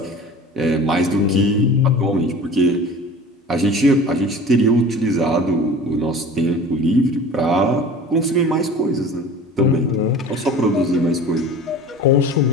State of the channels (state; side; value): normal; both; correlation 0.40